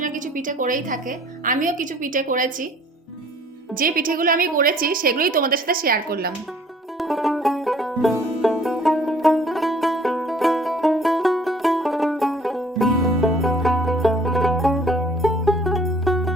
না কিছু পিঠে করেই থাকে। আমিও কিছু পিঠে করেছি। যে পিঠেগুলো আমি করেছি সেগুলোই তোমাদের সাথে শেয়ার করলাম।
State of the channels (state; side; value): normal; both; correlation 0.55